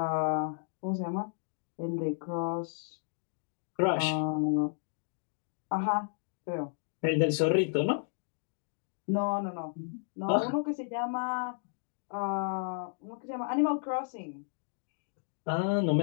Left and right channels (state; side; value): silent; right; digital silence